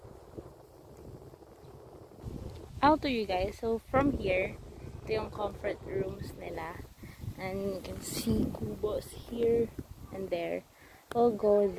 I'll to you guys. So from here, ito yung comfort rooms nila. And you can see kubos here and there. We'll go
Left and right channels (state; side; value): identical; both; correlation 1.00